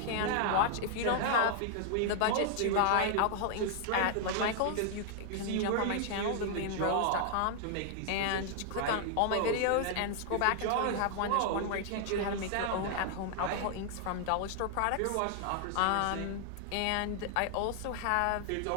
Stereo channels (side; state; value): both; different; correlation 0.00